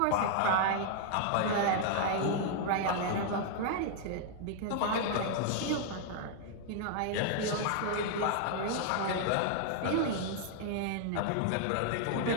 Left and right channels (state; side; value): different; both; correlation -0.01